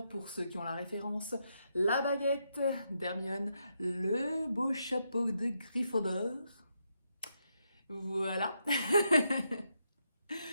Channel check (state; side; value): inverted; both; correlation -0.81